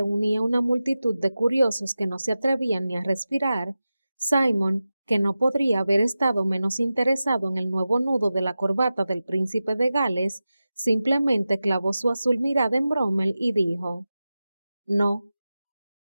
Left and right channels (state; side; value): inverted; both; correlation -0.94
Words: una multitud de curiosos que no se atrevían ni a respirar, Simon, que no podría haber estado menos interesado en el nuevo nudo de la corbata del príncipe de Gales, simplemente clavó su azul mirada en Brummel y dijo, no,